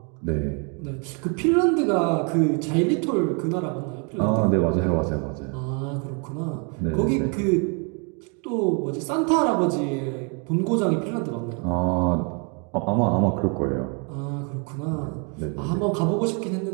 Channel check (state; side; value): quieter; left; 36.0 dB